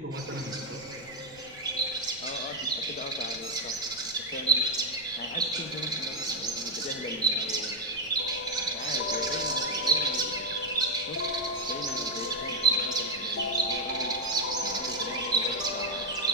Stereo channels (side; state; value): left; noise; rumble, 23 dB below the sound